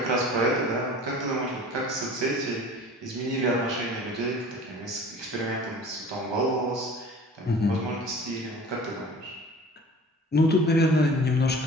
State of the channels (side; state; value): both; normal; correlation 0.44